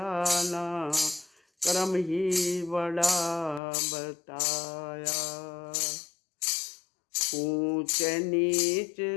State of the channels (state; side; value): drops out; right; at 3.6 s